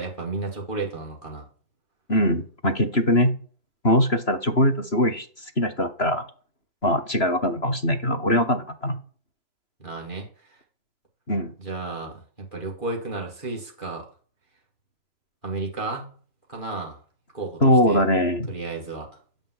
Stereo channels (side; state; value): right; late; 3.0 ms